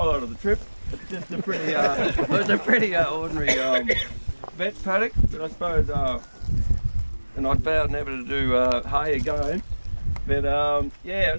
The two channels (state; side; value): inverted; both; correlation -1.00